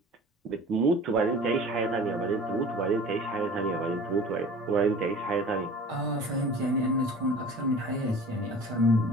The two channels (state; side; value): normal; both; correlation 0.42